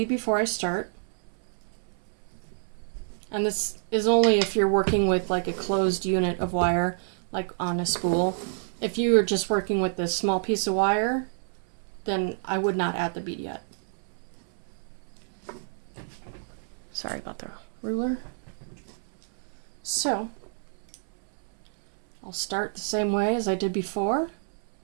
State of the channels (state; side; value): silent; left; 59 dB below the other